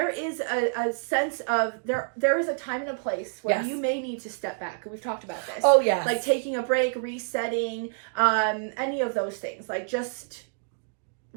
is a sense of, there is a time and a place where you may need to step back. We've talked about this. Oh, yes. Like taking a break, resetting, any of those things. Like just,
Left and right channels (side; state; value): left; silent; digital silence